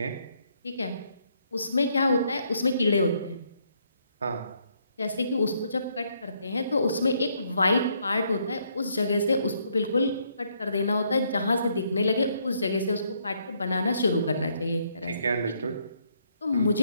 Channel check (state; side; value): inverted; both; correlation -0.71